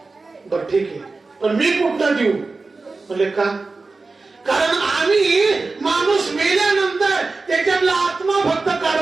बर ठीक आहे, पण मी कुठं देऊ? म्हणले का? कारण आम्ही माणूस मेल्यानंतर त्याच्यातला आत्मा फक्त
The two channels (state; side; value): quieter; left; 3.8 dB